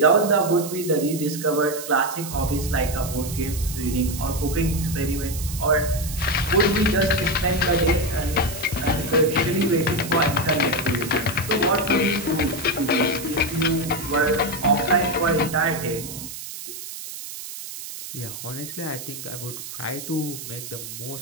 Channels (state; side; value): noise; right; hiss, 10 dB below the sound